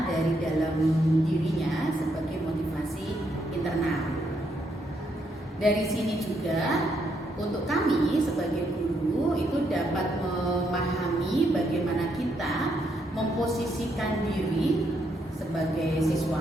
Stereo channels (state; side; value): normal; both; correlation 0.76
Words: dari dalam dirinya sebagai motivasi internal. Dari sini juga untuk kami sebagai guru itu dapat memahami bagaimana kita memposisikan diri sebagai